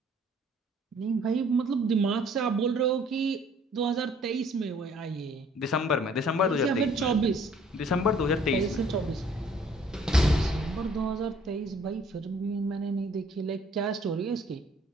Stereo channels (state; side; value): normal; both; correlation 0.58